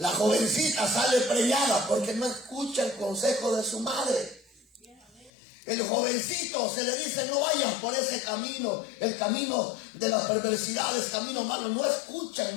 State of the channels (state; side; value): drops out; right; at 5.3 s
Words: jovencita sale preñada porque no escucha el consejo de su madre. El jovencito se le dice, no vayas por ese camino, el camino de las perversidades, camino malo. No escuchan,